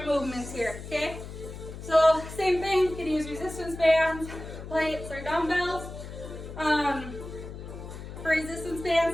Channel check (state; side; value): noise; left; hum, 11 dB below the sound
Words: movements here. Okay. So same thing. You can use resistance bands, plates, or dumbbells. For resistance